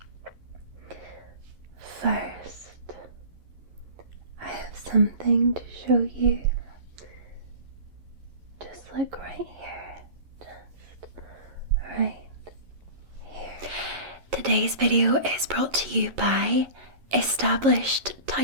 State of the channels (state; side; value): late; left; 11 ms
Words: First, I have something to show you. Just like right here. Just right here. Today's video is brought to you by Established